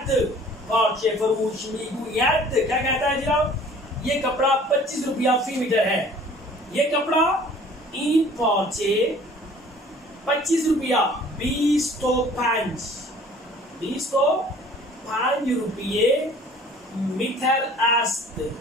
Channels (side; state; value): both; normal; correlation 0.51